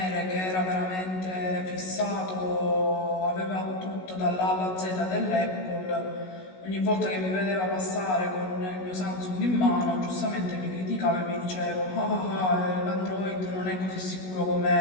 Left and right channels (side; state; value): right; late; 16 ms